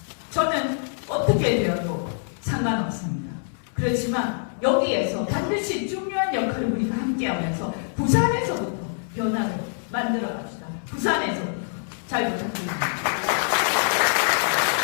저는 어떻게 되어도 상관없습니다. 그렇지만 여기에서 반드시 중요한 역할을 우리가 함께하면서 부산에서부터 변화를 만들어 갑시다. 부산에서부터 잘 부탁드립니다.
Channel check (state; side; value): silent; right; 62 dB below the other